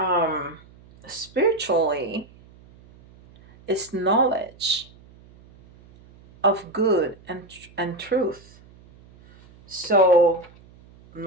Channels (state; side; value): noise; right; hum, 25 dB below the sound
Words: spiritually is knowledge of good and truth. So